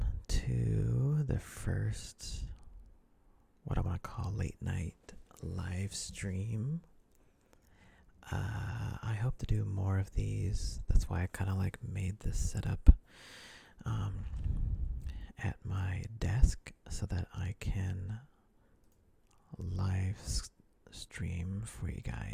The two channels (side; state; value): both; identical; correlation 1.00